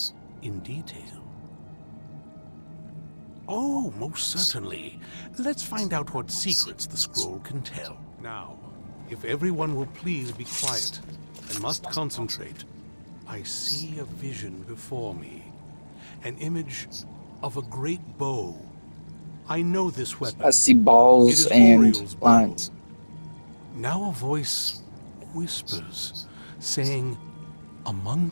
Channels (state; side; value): inverted; both; correlation -1.00